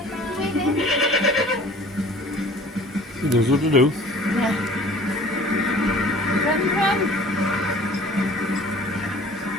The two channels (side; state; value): both; normal; correlation 0.48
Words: waving? He knows what to do. Yeah. Run, run.